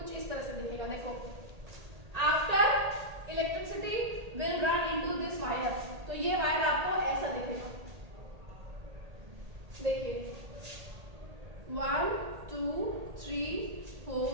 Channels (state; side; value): late; left; 1.8 ms